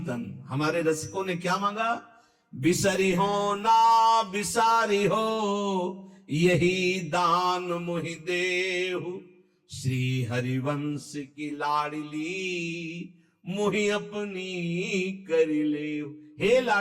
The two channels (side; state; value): both; identical; correlation 1.00